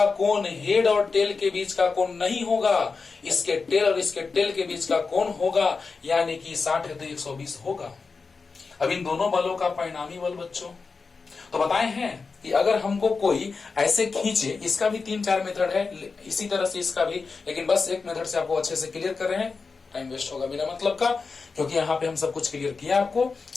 कोण हेड और टेल के बीच का कोण नहीं होगा, इसके टेल और इसके टेल के बीच का कोण होगा, यानी कि 60 है तो 120 होगा। अब इन दोनों बलों का परिणामी बल बच्चों तो बताए हैं कि अगर हमको कोई ऐसे खींचे, इसका भी 3-4 मेथड है, इसी तरह से इसका भी, लेकिन बस एक मेथड से आपको अच्छे से क्लियर कर रहे हैं, टाइम वेस्ट होगा बिना मतलब का, क्योंकि यहाँ पे हम सब कुछ क्लियर किया आपको।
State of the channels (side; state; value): right; quieter; 4.6 dB